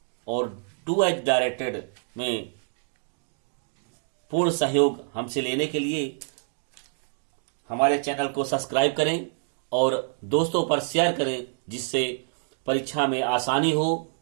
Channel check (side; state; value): left; silent; digital silence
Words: और डू एज डायरेक्टेड में पूर्ण सहयोग हमसे लेने के लिए हमारे चैनल को सब्सक्राइब करें और दोस्तों पर शेयर करें, जिससे परीक्षा में आसानी हो।